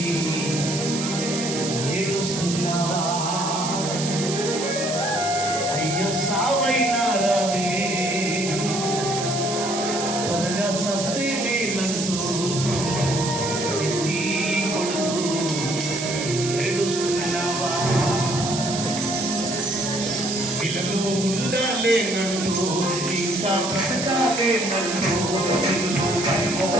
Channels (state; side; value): noise; right; hiss, 5 dB below the sound